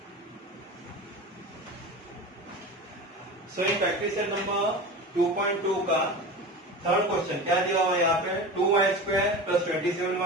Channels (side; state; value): both; normal; correlation 0.30